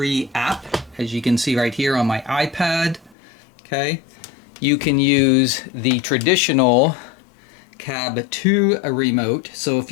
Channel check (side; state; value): right; drops out; at 3.2 s